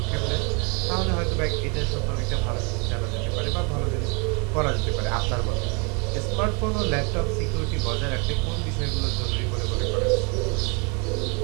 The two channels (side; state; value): left; quieter; 33.6 dB